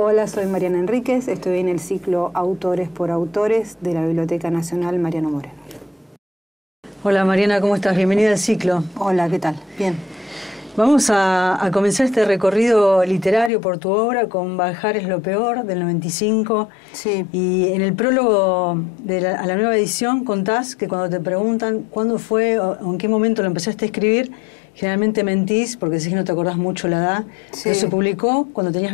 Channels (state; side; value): drops out; right; at 13.5 s